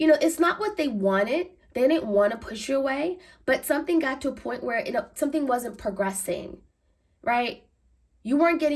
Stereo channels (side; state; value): both; identical; correlation 1.00